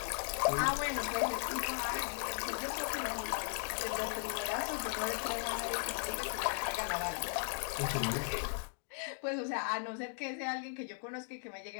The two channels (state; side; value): silent; right; 53 dB below the other